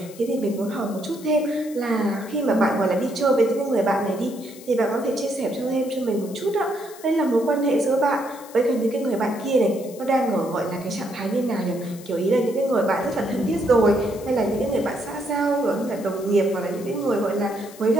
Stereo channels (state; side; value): noise; left; hiss, 19 dB below the sound